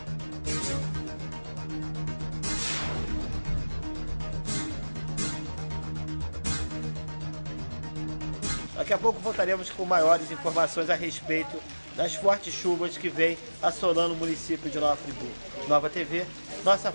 Daqui a pouco voltaremos com maiores informações a respeito das fortes chuvas que vêm assolando o município de Nova Friburgo. Nova TV, nossa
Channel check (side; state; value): both; inverted; correlation -1.00